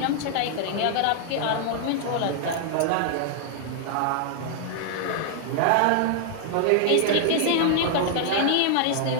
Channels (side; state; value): both; different; correlation -0.01